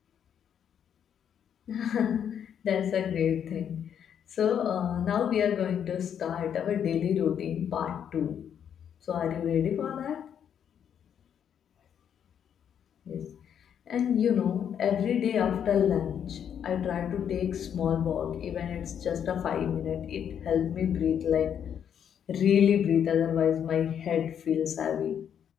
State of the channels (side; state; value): right; quieter; 8.6 dB